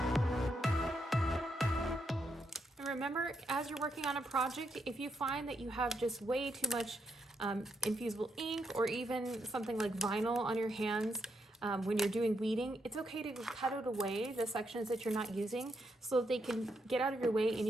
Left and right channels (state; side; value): normal; both; correlation 0.79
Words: And remember, as you're working on a project, if you find that you have just way too much infusible ink or even something like vinyl on your hands, when you're doing weeding, it's okay to cut it away, the sections that you're not using, so that they can get out of your way and